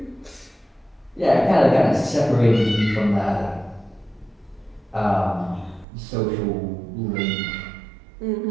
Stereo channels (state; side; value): drops out; left; at 5.9 s